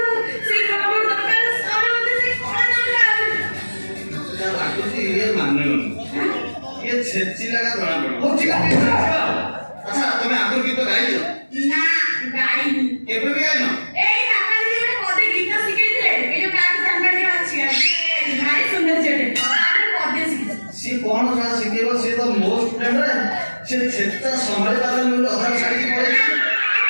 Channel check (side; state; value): both; inverted; correlation -1.00